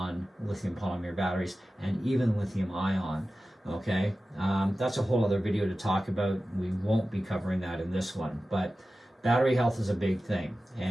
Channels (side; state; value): both; normal; correlation 0.95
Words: lithium polymer batteries and even lithium ion, okay? That's a whole other video to talk about. We won't be covering that in this one, but battery health is a big thing,